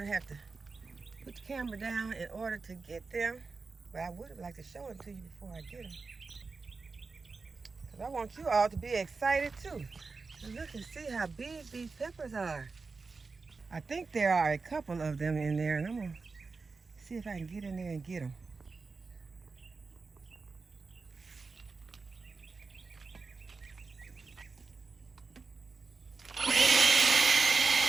have to put the camera down in order to get them. But I would have liked to show them to you before I get them. Because I want you all to be excited too. And look and see how big these peppers are. I think there are a couple of them in there, and I'm gonna see if I can get in there and get them.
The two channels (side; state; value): left; quieter; 4.3 dB